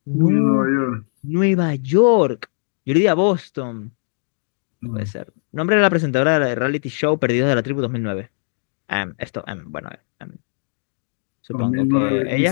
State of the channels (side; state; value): right; silent; digital silence